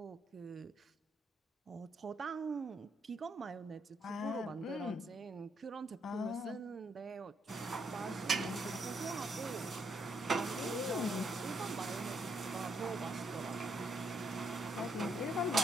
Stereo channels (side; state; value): both; normal; correlation 0.74